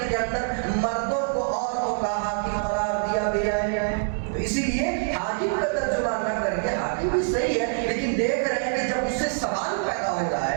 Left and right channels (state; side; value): silent; left; 60 dB below the other